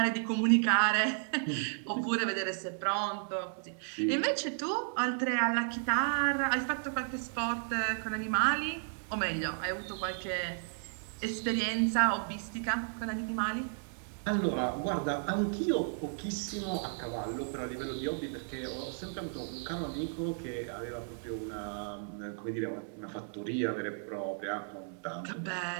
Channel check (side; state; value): left; silent; digital silence